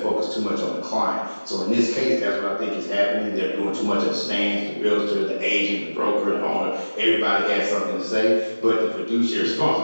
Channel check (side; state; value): both; inverted; correlation -1.00